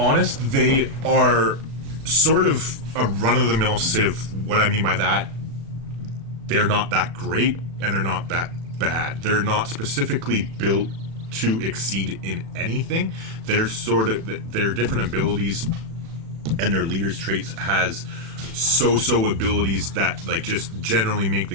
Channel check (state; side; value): late; left; 36 ms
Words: they are sort of a run-of-the-mill Civ. What I mean by that, they're not that great, and they're not that bad. They're not specifically built to exceed in anything. They're their different abilities and their leaders' traits has so-so abilities that like just generally make the